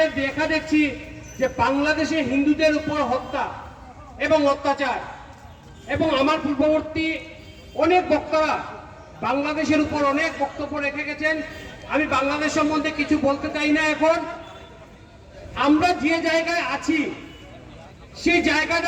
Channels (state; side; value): identical; both; correlation 1.00